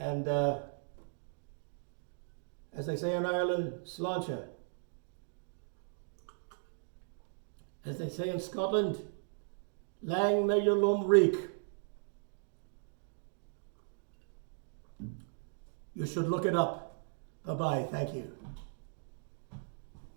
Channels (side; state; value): left; silent; digital silence